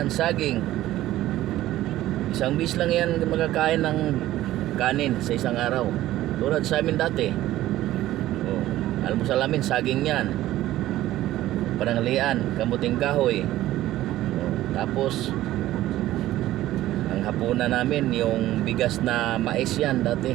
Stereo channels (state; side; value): quieter; left; 14.8 dB